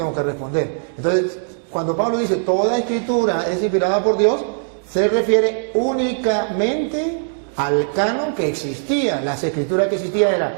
que responder. Entonces, cuando Pablo dice, toda escritura es inspirada por Dios, se refiere únicamente al canon que existía. Las escrituras que existía eran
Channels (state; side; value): silent; left; 66 dB below the other